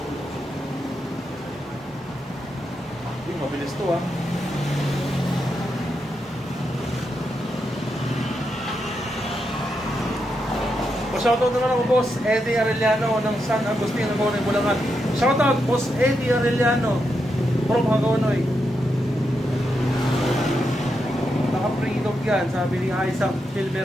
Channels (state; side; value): normal; both; correlation 0.84